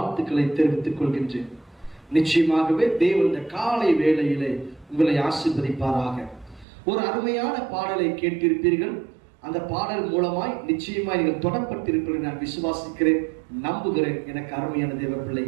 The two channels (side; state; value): left; drops out; at 6.7 s